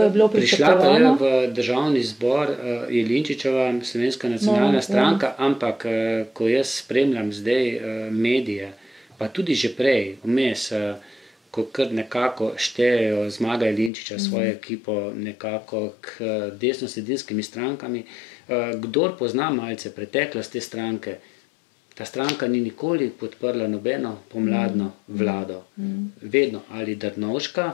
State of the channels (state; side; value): drops out; right; at 13.9 s